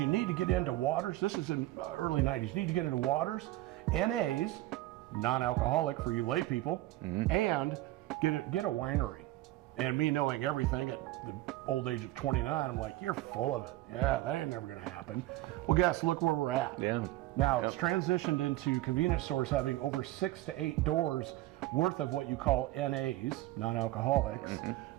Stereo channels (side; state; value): left; quieter; 16.7 dB